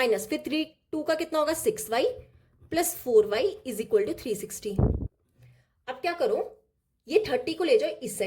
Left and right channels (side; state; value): both; identical; correlation 1.00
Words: फिर 2 का कितना होगा 6y plus 4y is equal to 360। अब क्या करो, ये 30 को ले जाओ इस